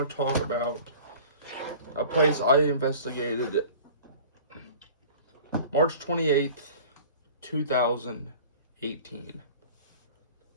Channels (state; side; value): inverted; both; correlation -0.43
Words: to talk about a place I investigated March 28th, 2018.